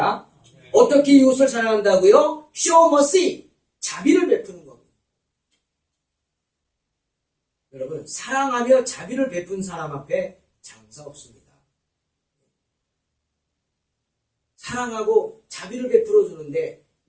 어떻게 이웃을 사랑한다고요? Show mercy, 자비를 베푸는 겁니다. 여러분, 사랑하며 자비를 베푼 사람 앞에 장사 없습니다. 사랑하고 자비를 베풀어 주는데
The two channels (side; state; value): both; identical; correlation 1.00